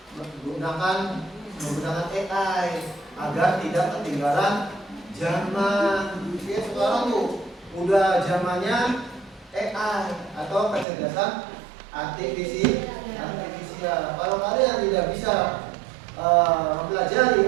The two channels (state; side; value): drops out; left; at 10.9 s